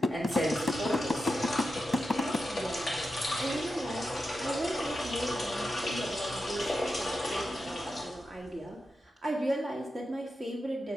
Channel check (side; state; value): both; normal; correlation 0.89